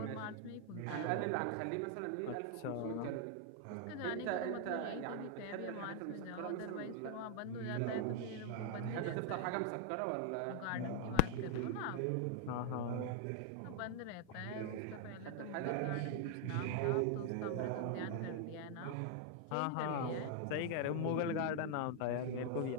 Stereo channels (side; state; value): both; different; correlation 0.00